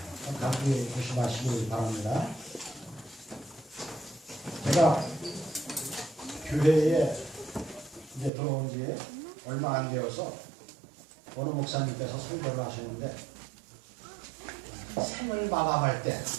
감기 조심하시기 바랍니다. 제가 교회에 이제 들어온 지 얼마 안 되어서 어느 목사님께서 설교를 하셨는데 생을 마감할 때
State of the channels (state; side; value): drops out; left; at 8.3 s